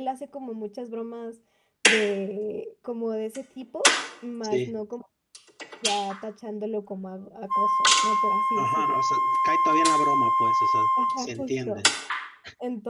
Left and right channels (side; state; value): both; identical; correlation 1.00